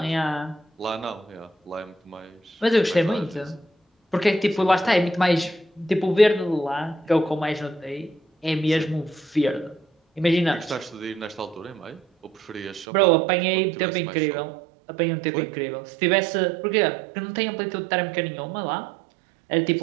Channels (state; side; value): drops out; left; at 12.9 s